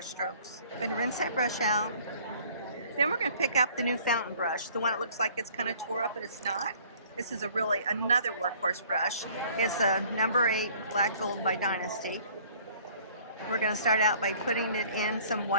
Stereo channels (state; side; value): inverted; both; correlation -0.55